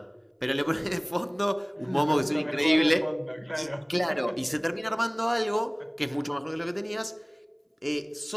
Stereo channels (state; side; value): identical; both; correlation 1.00